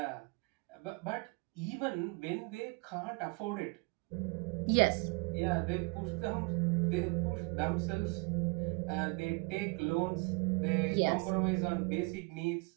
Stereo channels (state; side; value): quieter; left; 30.1 dB